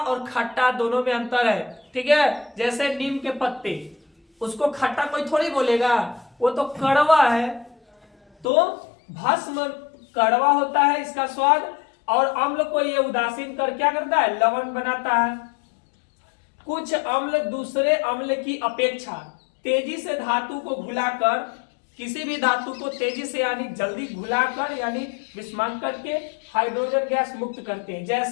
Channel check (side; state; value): right; drops out; at 8.5 s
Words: खट्टा दोनों में अंतर है। ठीक है, जैसे नीम के पत्ते, उसको खट्टा कोई थोड़ी बोलेगा, वो तो कड़वा है। तो भस्म कड़वा होता है इसका स्वाद, और अम्ल को ये उदासीन कर क्या करता है, लवण बनाता है। कुछ अम्ल दूसरे अम्ल की अपेक्षा तेजी से धातु को घुलाकर, किसी भी धातु को तेजी से यानी जल्दी घुलाकर यानी विस्मांक करके हाइड्रोजन गैस मुक्त करते हैं।